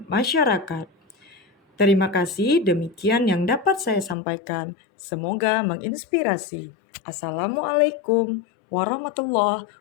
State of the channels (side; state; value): right; drops out; at 4.2 s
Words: masyarakat. Terima kasih, demikian yang dapat saya sampaikan. Semoga menginspirasi. Assalamualaikum warahmatullahi